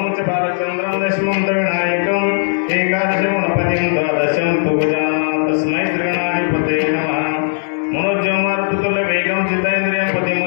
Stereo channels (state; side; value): silent; right; digital silence